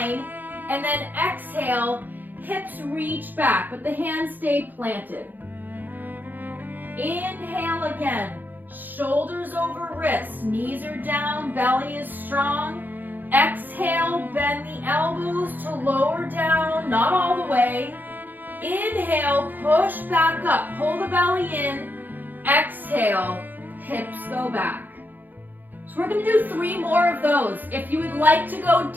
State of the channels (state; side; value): late; left; 0.087 ms